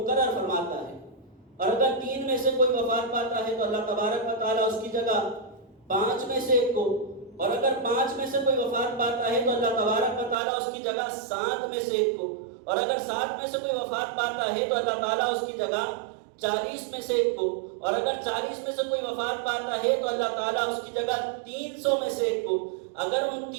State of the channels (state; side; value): drops out; left; at 10.4 s